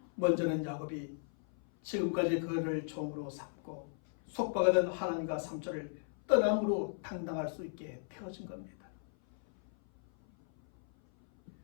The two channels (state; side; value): silent; right; 54 dB below the other